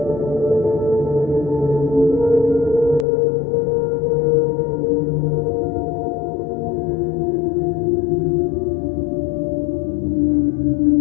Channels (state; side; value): drops out; right; at 3.1 s